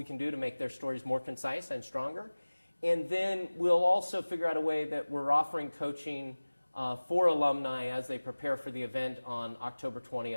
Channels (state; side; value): inverted; both; correlation -1.00